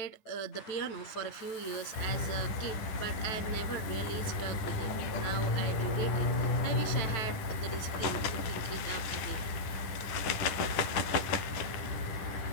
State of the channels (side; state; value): right; late; 10 ms